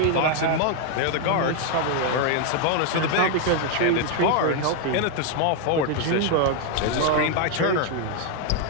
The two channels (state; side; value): different; both; correlation 0.01